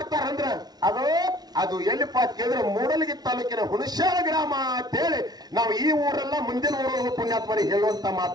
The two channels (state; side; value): late; left; 0.19 ms